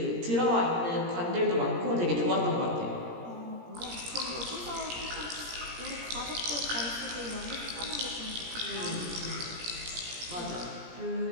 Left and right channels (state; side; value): late; left; 17 ms